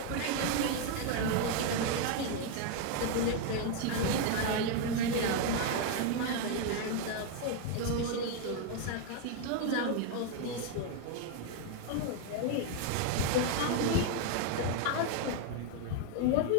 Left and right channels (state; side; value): different; both; correlation 0.01